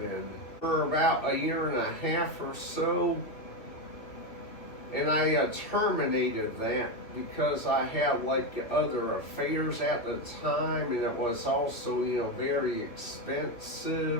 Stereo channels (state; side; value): late; right; 2.7 ms